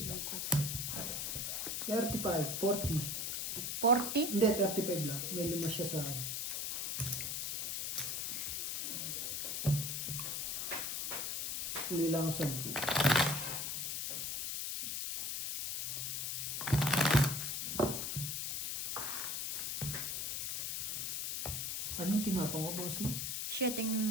35, 40. 40. Hindi, 35 lang. May 5 siya sa akin. Uli lang ako 10. Anong tinapang ko, bossing?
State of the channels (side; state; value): left; noise; hiss, 1 dB below the sound